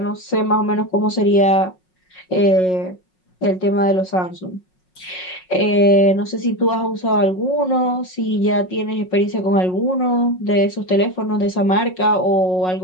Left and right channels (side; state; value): right; late; 5.5 ms